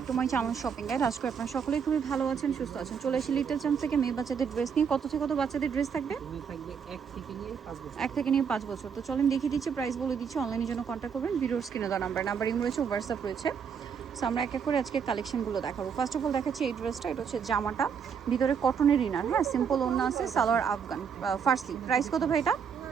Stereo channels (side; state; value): left; quieter; 6.8 dB